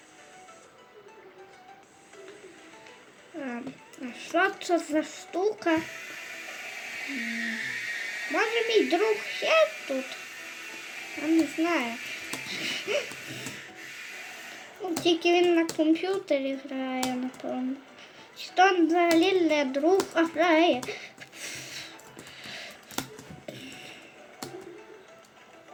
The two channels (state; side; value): identical; both; correlation 1.00